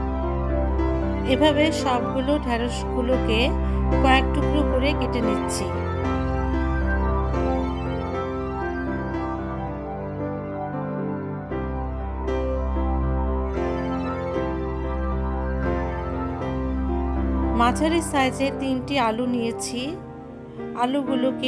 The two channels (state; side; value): identical; both; correlation 1.00